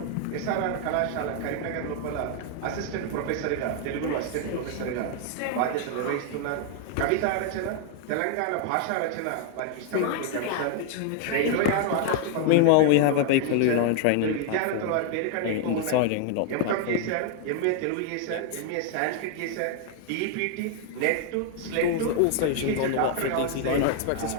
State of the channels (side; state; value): both; different; correlation 0.00